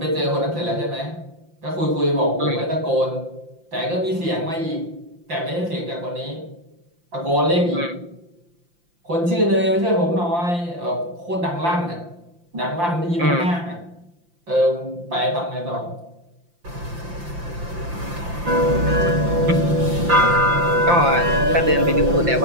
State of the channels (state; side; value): late; left; 5.8 ms